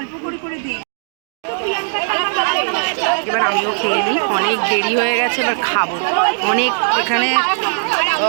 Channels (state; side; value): silent; left; digital silence